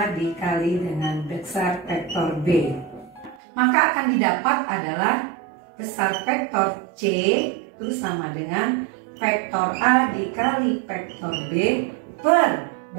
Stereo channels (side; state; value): left; drops out; at 3.4 s